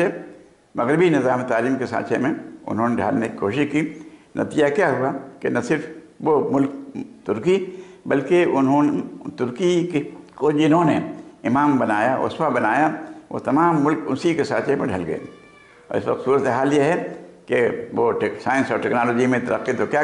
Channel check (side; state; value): both; identical; correlation 1.00